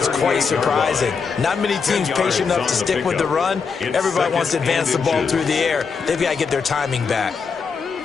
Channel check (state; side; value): quieter; right; 5.5 dB